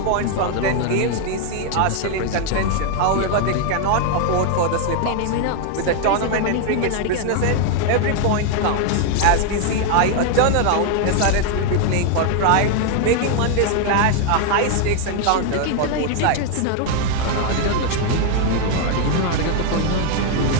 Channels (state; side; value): different; both; correlation 0.00